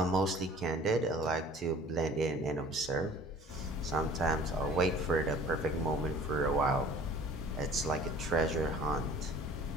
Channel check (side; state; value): both; normal; correlation 0.49